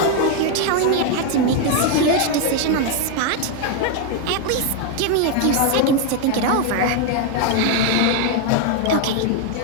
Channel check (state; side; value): different; both; correlation 0.01